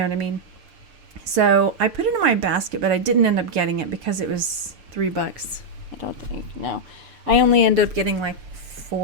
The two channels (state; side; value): late; left; 6.9 ms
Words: what I mean? So I put it in my basket, but I didn't end up getting it because it was $3. I don't think, no. I only ended up getting like